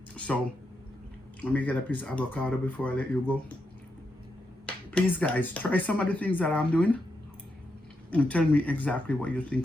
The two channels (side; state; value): both; normal; correlation 0.84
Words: So let me get a piece of avocado before I let you go. Please guys, try some of the things that I'm doing and tell me exactly what you